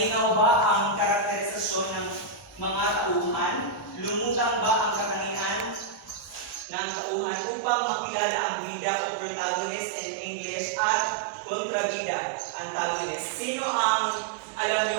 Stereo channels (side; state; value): left; drops out; at 6.7 s